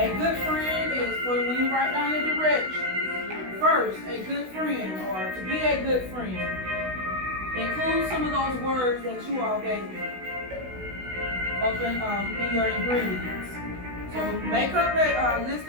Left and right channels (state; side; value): late; left; 16 ms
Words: good friend is when you write down your directions. First, a good friend, or to be a good friend, include some of those words that you all gave me up in your ingredients. So make up a list